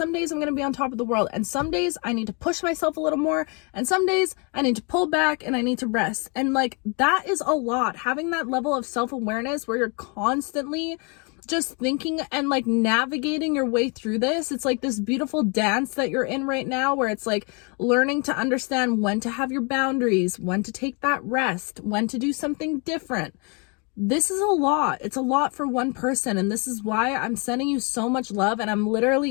days I'm going to be on top of the world. And some days I need to push myself a little more. And some days I need to pull back and I need to rest. And like, that is a lot. Having that level of self-awareness where you're constantly just thinking and like navigating your way through this. It's like this beautiful dance that you're in right now, where it's like learning to understand when to have your boundaries, when to take that rest, when to do something different. This is a lot. It's a lot for one person. And this is why I'm sending you so much love. And I'm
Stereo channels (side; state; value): right; quieter; 33.9 dB